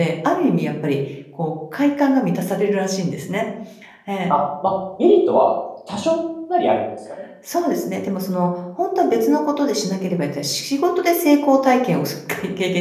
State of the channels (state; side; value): identical; both; correlation 1.00